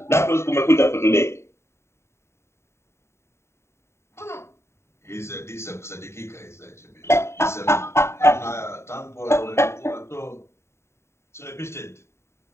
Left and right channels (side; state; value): right; late; 0.13 ms